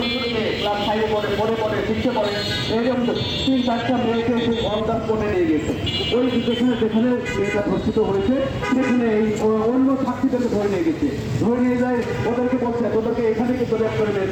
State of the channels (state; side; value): identical; both; correlation 1.00